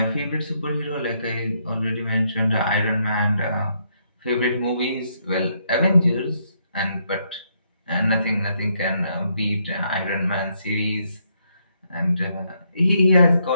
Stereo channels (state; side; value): inverted; both; correlation -0.75